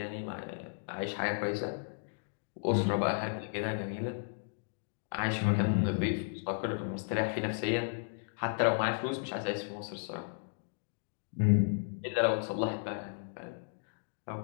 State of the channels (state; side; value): silent; right; digital silence